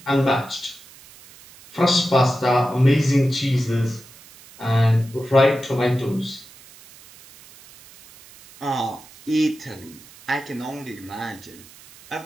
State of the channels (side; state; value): right; noise; hiss, 22 dB below the sound